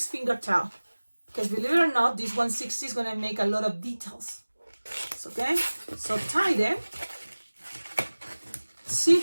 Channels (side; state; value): both; inverted; correlation -1.00